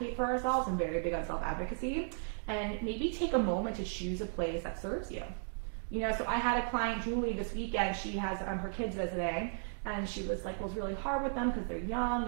for ourselves. I'm very big on self-advocacy, and maybe take a moment to choose a place that serves you. You know, so I had a client, Julie, this weekend. She has her kids visiting, and she was like, well, it's really hard with them because they're young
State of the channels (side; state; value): left; silent; digital silence